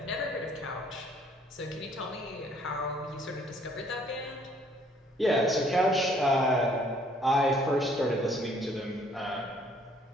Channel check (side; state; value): both; normal; correlation 0.62